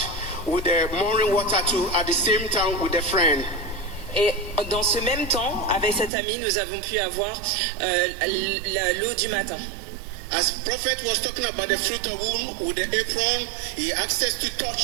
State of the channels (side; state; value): left; drops out; at 6.1 s